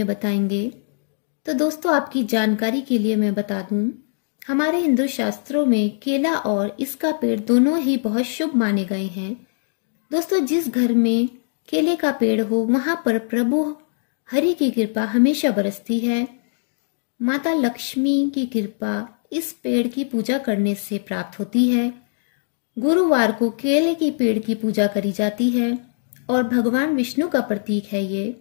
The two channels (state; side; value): silent; right; digital silence